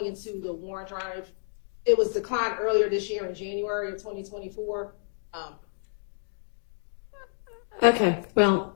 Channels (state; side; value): silent; right; digital silence